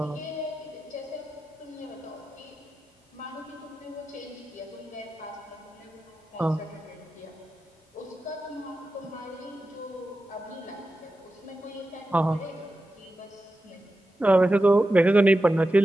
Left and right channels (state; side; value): normal; both; correlation 0.92